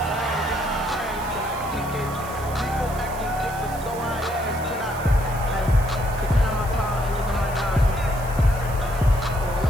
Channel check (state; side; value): noise; right; hiss, 17 dB below the sound